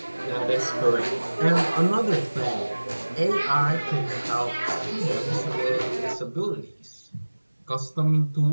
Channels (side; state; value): both; inverted; correlation -1.00